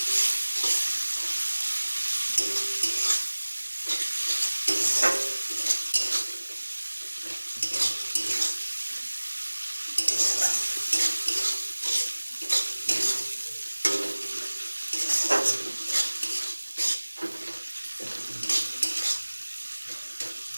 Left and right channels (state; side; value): inverted; both; correlation -1.00